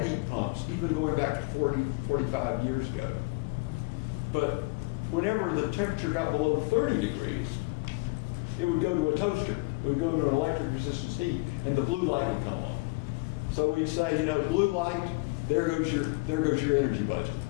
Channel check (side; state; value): right; quieter; 26.4 dB